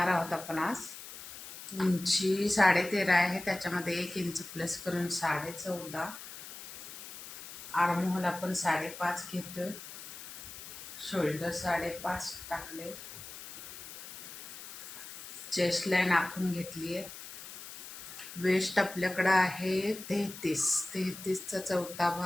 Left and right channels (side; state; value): left; noise; hiss, 12 dB below the sound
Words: आहोत आपण आज. उंची 13.5 आहे, त्याच्यामध्ये 1 इंच प्लस करून 14.5. आर्महोल आपण 5.5 घेतोय. शोल्डर 5.5 टाकले. चेस्ट लाईन आखून घेतली आहे. वेस्ट आपल्याकडं आहे 33चा चौथा